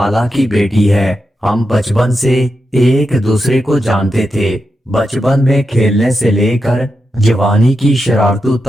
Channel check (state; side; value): normal; both; correlation 0.87